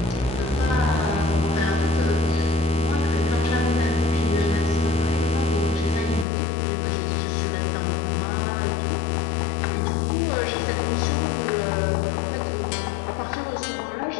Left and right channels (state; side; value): drops out; right; at 6.2 s